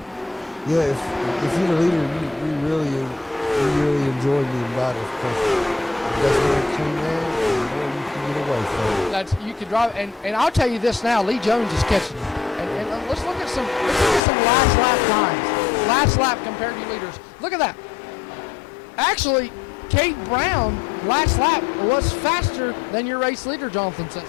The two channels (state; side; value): drops out; right; at 14.2 s